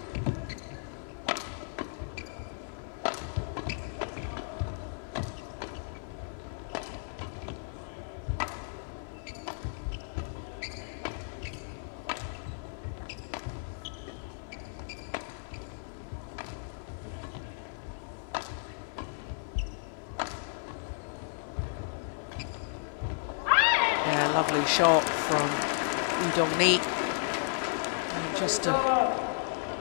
Shot from Dongni. Just to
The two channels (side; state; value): right; silent; digital silence